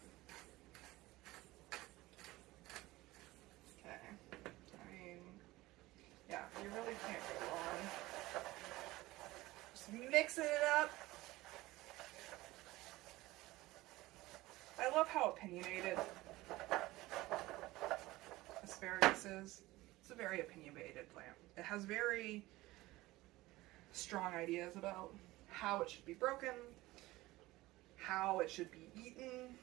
Okay, I mean, yeah, you really can't go wrong. Just mixing it up. I love how opinionated asparagus is. It's a very opinionated plant. It has very strong ideas about how it should be broken, how it should be eaten,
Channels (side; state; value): left; quieter; 18.8 dB